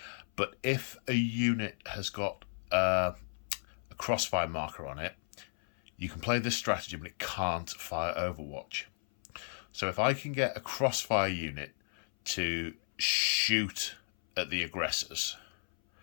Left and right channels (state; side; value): silent; right; 55 dB below the other